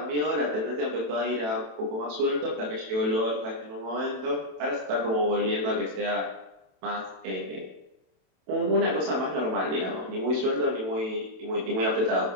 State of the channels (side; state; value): left; late; 27 ms